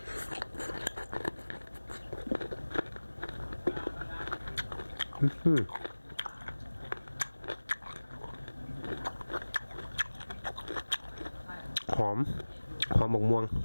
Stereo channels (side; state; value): both; inverted; correlation -1.00